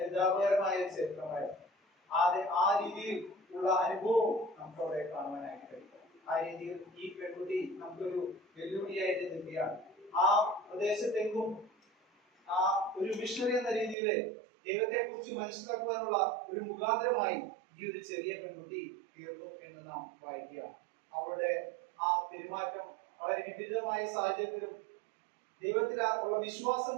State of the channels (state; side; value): drops out; left; at 14.0 s